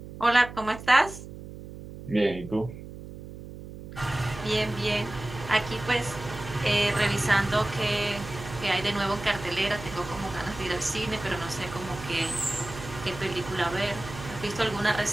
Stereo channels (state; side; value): noise; right; hum, 13 dB below the sound